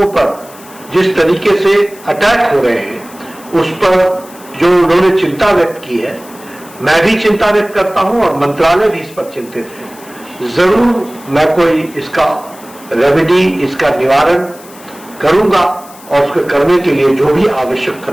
पर जिस तरीके से अटैक हो रहे हैं उस पर जो उन्होंने चिंता व्यक्त की है, मैं भी चिंता व्यक्त करता हूं और मंत्रालय भी इस पर चिंतित है। जरूर मैं कोई इसका रेमेडी, इसका निवारण करूंगा और उसको करने के लिए जो भी आवश्यक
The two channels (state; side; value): noise; left; hiss, 21 dB below the sound